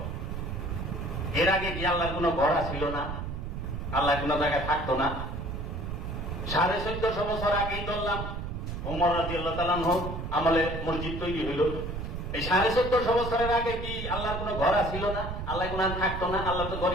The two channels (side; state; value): right; noise; rumble, 5 dB below the sound